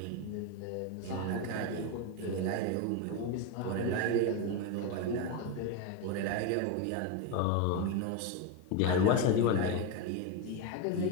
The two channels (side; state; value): both; different; correlation 0.03